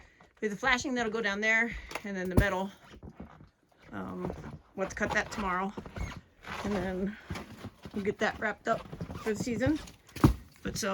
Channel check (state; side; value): identical; both; correlation 1.00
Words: we have the flashing that'll go down there, and then the metal. We'll have to cut that tomorrow. And then we'll get that wrapped up for the season. But